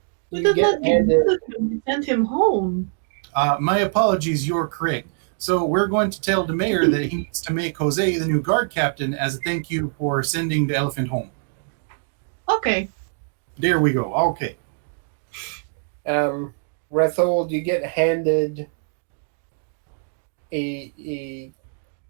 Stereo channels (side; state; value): left; silent; digital silence